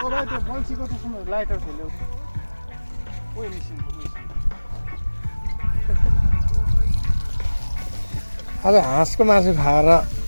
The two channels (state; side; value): inverted; both; correlation -1.00